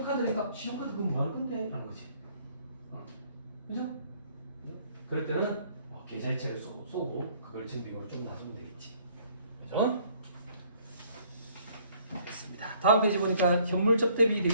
신용카드 그거 뭐 하는 건데? 라는 거지. 그죠? 그럴 때는 계좌이체를 쏘고 그걸 증빙으로 좀 놔주면 되겠지. 그죠? 됐습니다. 다음 페이지 보니까 현물 접대비 돼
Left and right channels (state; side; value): inverted; both; correlation -0.61